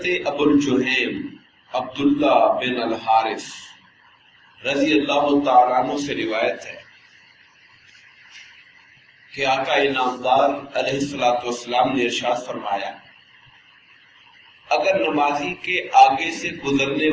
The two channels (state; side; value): identical; both; correlation 1.00